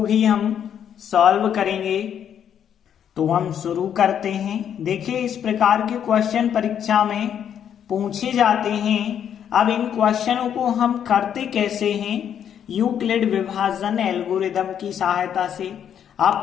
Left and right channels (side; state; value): right; quieter; 9.0 dB